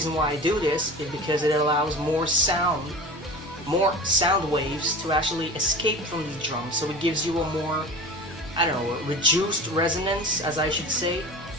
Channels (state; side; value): normal; both; correlation 0.35